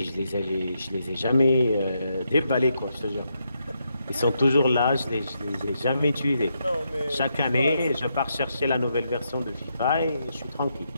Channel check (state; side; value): inverted; both; correlation -0.80